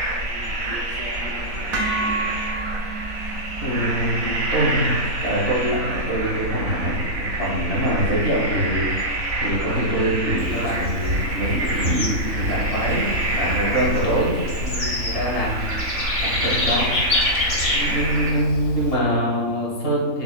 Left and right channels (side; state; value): left; late; 3.4 ms